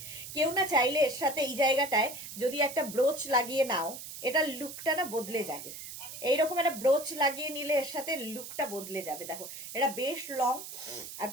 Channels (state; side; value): noise; right; hiss, 11 dB below the sound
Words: কেউ না চাইলে এর সাথে এই জায়গাটায় যদি একটা ব্রোচ লাগিয়ে নাও, এটা লুকটা না বদলে যাবে। এইরকম একটা ব্রোচ লাগিয়ে নিলে এর সাথে লুকটা বদলে যাবে। দেখো, এটা বেশ লং আর